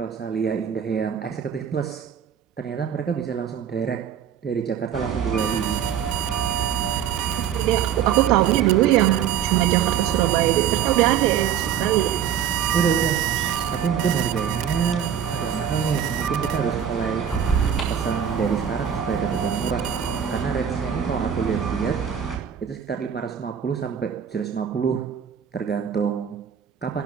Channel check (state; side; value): quieter; left; 8.8 dB